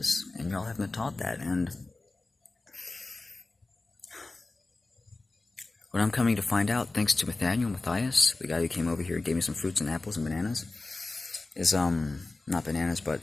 and y'all haven't been taught that. And what I'm coming to find out, thanks to Matthias, the guy who came over here and gave me some fruits and apples and bananas, is not bananas, but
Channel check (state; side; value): quieter; right; 3.2 dB